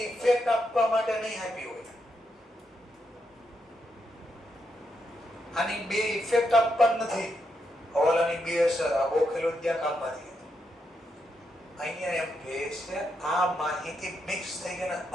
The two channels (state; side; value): normal; both; correlation 0.82